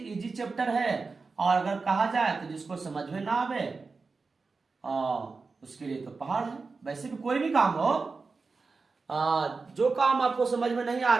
चैप्टर है, और अगर कहा जाए तो जिसको समझ में ना आवे उसके लिए तो पहाड़ है। वैसे भी कोई भी काम हो, जो काम आपको समझ में नहीं आ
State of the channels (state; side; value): quieter; left; 4.3 dB